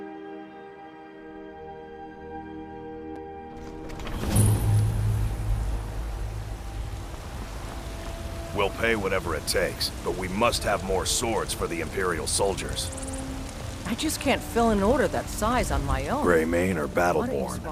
We'll pay whatever it takes, but we must have more swords for the Imperial soldiers. I just can't fill an order that size on my own. Greymane or Why don't you Battleborn?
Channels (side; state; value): both; identical; correlation 1.00